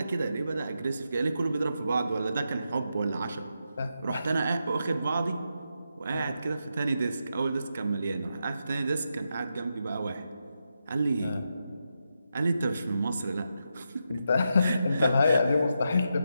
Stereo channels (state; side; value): inverted; both; correlation -0.85